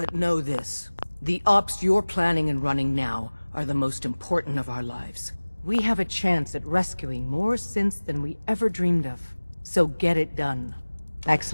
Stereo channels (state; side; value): inverted; both; correlation -1.00